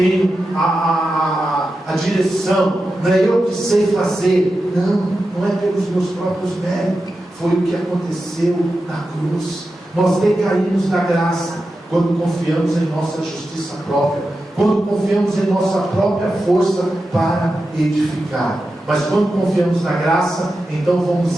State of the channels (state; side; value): normal; both; correlation 0.91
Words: a direção, não é eu que sei fazer, não é pelos meus próprios méritos. Foi o que aconteceu na cruz. Nós decaímos da graça quando confiamos em nossa justiça própria, quando confiamos em nossa própria força para edificar. Mas quando confiamos na graça, então